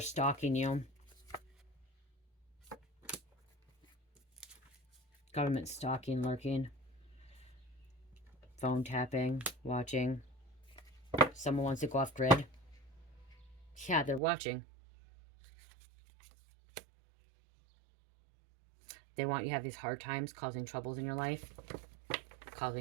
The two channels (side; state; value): left; drops out; at 14.2 s